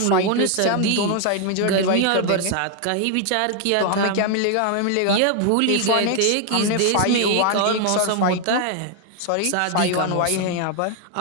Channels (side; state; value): both; different; correlation 0.00